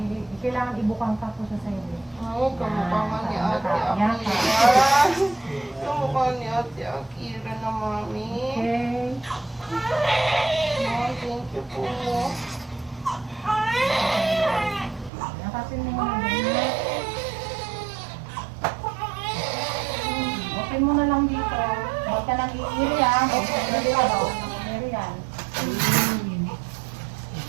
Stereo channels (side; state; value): left; drops out; at 15.1 s